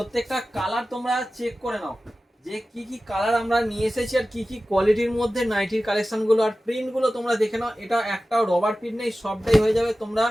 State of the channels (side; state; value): both; normal; correlation 0.95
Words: কালার তোমরা চেক করে নাও যে কি কি কালার আমরা নিয়ে এসেছি আর কি কি কোয়ালিটির মধ্যে নাইটির কালেকশনগুলো আর প্রিন্টগুলো তোমরা দেখে নাও। এটা একটাও রবার প্রিন্ট নেই, সবটাই হয়ে যাবে। তোমরা